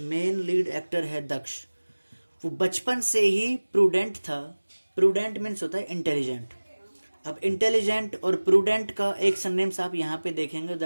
लीड एक्टर है दक्ष, वो बचपन से ही प्रूडेंट था। प्रूडेंट मीन्स होता है इंटेलिजेंट। अब इंटेलिजेंट और प्रूडेंट का एक सरनेम्स आप यहाँ पे देखेंगे,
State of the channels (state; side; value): inverted; both; correlation -1.00